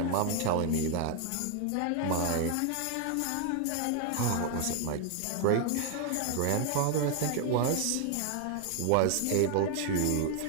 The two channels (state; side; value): different; both; correlation 0.00